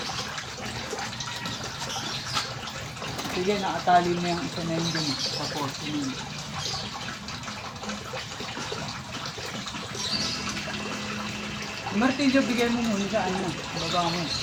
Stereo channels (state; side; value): identical; both; correlation 1.00